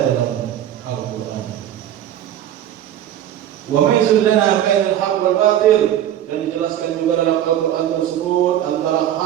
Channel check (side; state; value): left; quieter; 11.3 dB